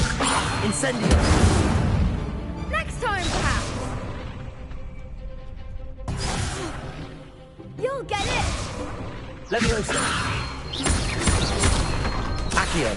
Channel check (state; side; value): identical; both; correlation 1.00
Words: Incendio. Next time, perhaps. You'll get it. Leviosa. Accio.